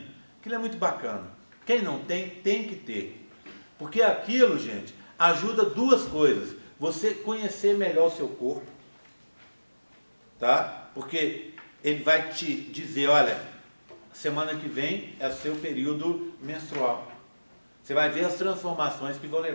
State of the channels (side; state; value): both; inverted; correlation -1.00